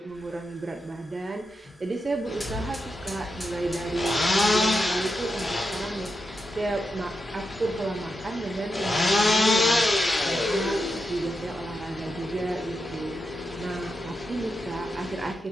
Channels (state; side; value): normal; both; correlation 0.87